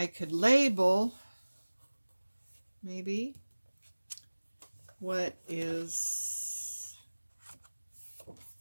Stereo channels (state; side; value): inverted; both; correlation -1.00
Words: could label maybe what is